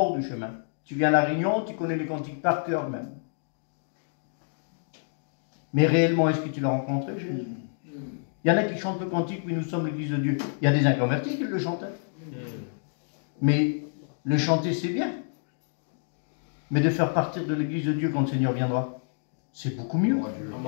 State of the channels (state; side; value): silent; right; digital silence